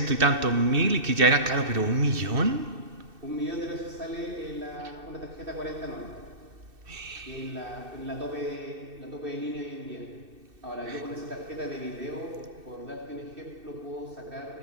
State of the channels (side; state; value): left; late; 2.6 ms